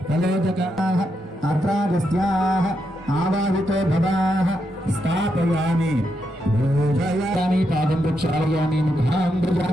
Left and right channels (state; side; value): normal; both; correlation 0.82